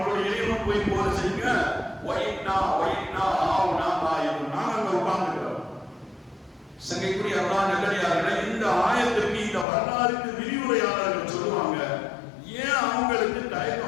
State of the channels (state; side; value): drops out; right; at 9.7 s